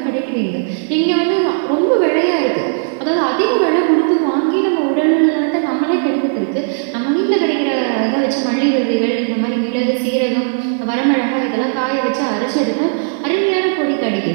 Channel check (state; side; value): silent; left; 59 dB below the other